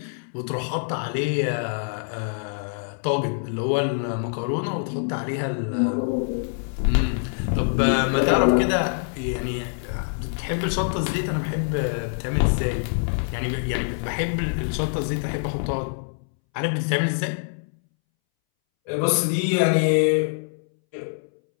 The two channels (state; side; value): silent; right; 62 dB below the other